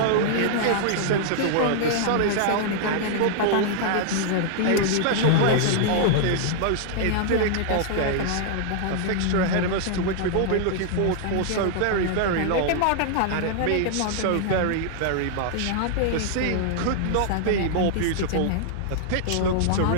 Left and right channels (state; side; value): different; both; correlation -0.01